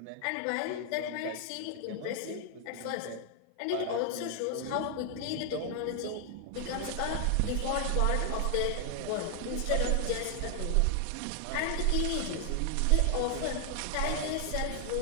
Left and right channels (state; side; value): different; both; correlation 0.00